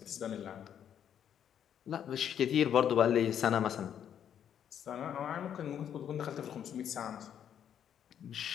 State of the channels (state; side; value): quieter; right; 9.2 dB